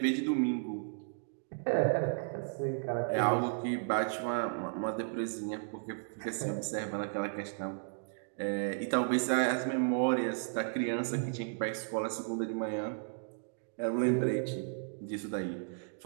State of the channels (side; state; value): left; silent; digital silence